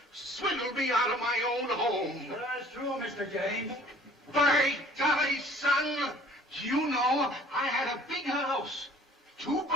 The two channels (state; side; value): normal; both; correlation 0.52